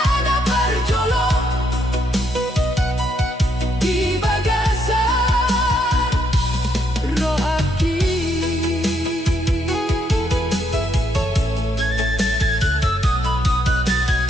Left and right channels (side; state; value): both; normal; correlation 0.75